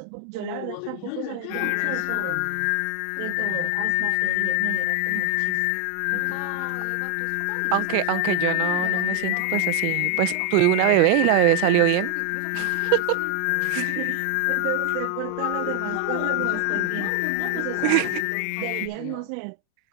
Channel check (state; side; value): different; both; correlation 0.01